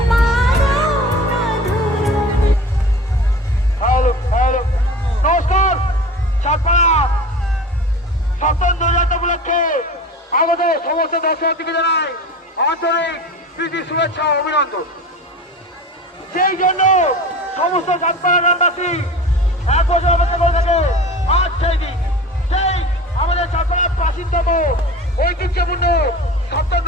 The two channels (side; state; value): both; normal; correlation 0.36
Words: নমস্কার, সাতপাড়া স্বতন্ত্র উপলক্ষে আমাদের সমস্ত দর্শকদেরকে জানাই আন্তরিক প্রীতি, শুভেচ্ছা ও অভিনন্দন। সেই জন্য সমস্ত সাতপাড়া গ্রামবাসী এক বছর অপেক্ষা করে থাকে আজ সেই দিন, সেই আমাদের সাতপাড়ার প্রাচীনতম ঐতিহ্যপূর্ণ